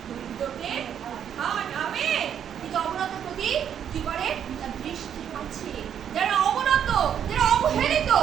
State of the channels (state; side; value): quieter; left; 8.9 dB